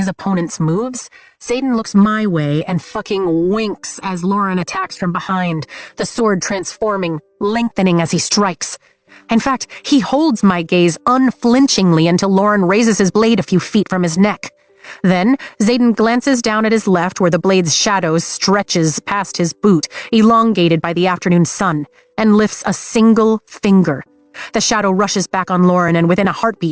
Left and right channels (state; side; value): identical; both; correlation 1.00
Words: opponent's moves, Xaden looks my way and fucking winks as Lauren attacks from behind, the sword transforming, lengthening as he strikes. In fact, he holds my gaze unflinchingly until Lauren raises his blade a few feet from his neck. Then, Xaden glances down at his left where the blade's shadow stretches past his boot, elongated by the afternoon sun, and lifts a single finger. The shadow rushes back on Lauren and within a